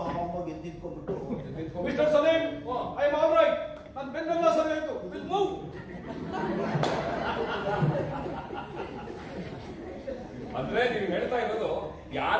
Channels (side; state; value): both; identical; correlation 1.00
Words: ಎದ್ದಿದ್ಕೊಂಡ್ಬಿಟ್ಟು, mister Salim, I am all right, ನನ್ನ ಬೆನ್ನೆಲ್ಲ ಸರಿ ಆಯ್ತು, ವಿಲ್ ಮೂವ್. ಅಂದ್ರೆ ನೀವು ಹೇಳ್ತಾ ಇರೋದು